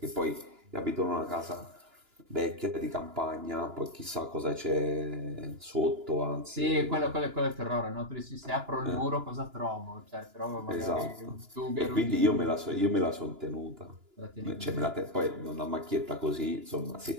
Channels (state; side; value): late; left; 2.9 ms